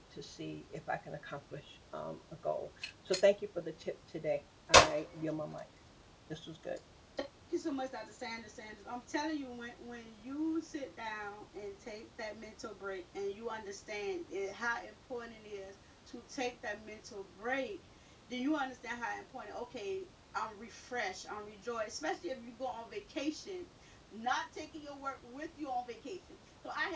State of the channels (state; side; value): identical; both; correlation 1.00